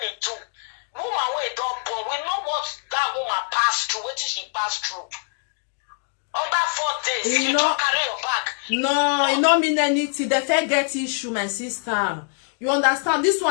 do, woman when don't born, we know what that woman passed through, what she passed through. Under 4 days, you don't carry your bag. No, it don't mean anything. The fair get issue, my sister. You understand? This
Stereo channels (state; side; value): silent; right; 56 dB below the other